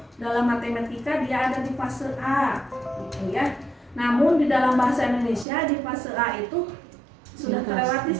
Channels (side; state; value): left; drops out; at 5.5 s